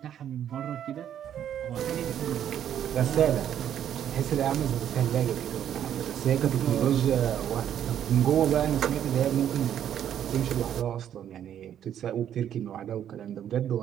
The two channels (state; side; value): quieter; left; 10.0 dB